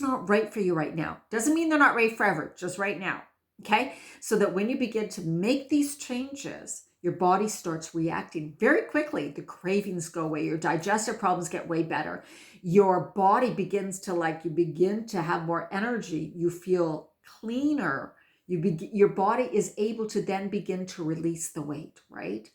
not right for you right now. Doesn't mean they're not right forever, just right now. Okay? So that when you begin to make these changes, your body starts reacting very quickly. The cravings go away. Your digestive problems get way better. Your body begins to you begin to have more energy. You feel cleaner. Your body is able to then begin to release the weight, right?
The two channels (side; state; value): both; identical; correlation 1.00